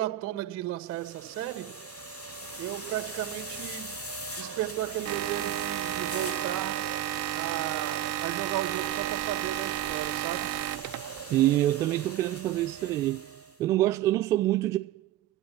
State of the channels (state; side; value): quieter; left; 12.4 dB